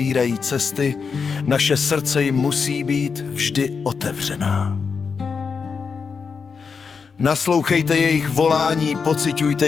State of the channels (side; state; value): right; quieter; 5.6 dB